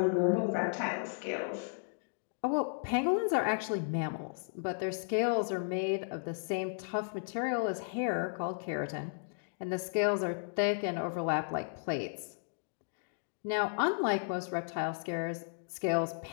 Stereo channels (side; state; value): right; silent; digital silence